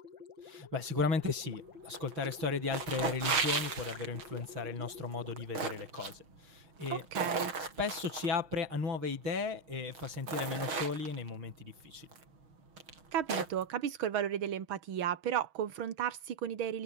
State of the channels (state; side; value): late; left; 6.5 ms